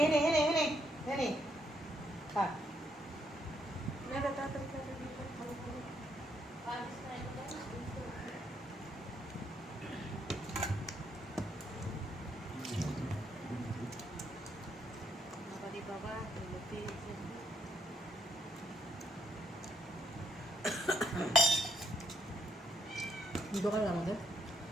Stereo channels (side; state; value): both; normal; correlation 0.72